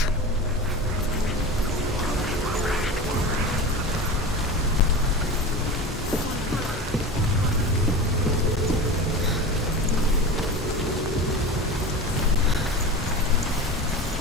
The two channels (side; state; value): both; normal; correlation 0.29